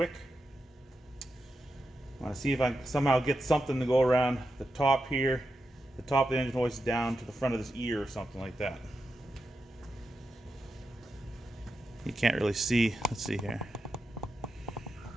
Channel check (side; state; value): both; normal; correlation 0.88